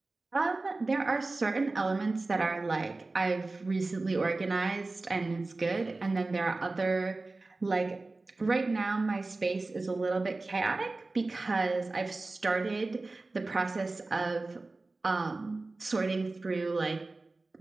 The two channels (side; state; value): left; quieter; 3.3 dB